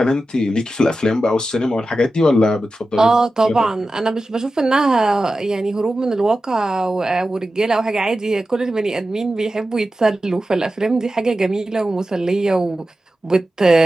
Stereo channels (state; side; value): normal; both; correlation 0.93